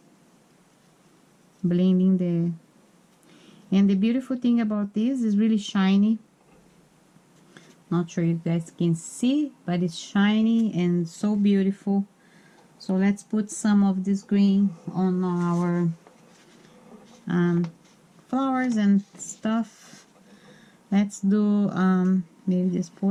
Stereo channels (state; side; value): identical; both; correlation 1.00